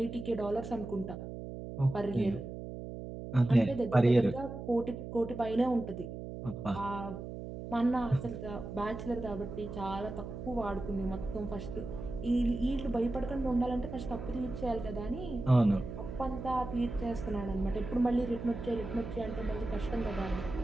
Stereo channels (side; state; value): right; noise; hum, 8 dB below the sound